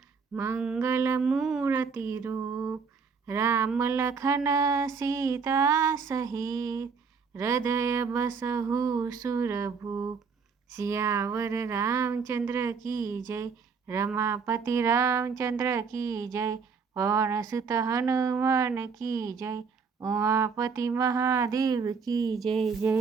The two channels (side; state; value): left; quieter; 5.5 dB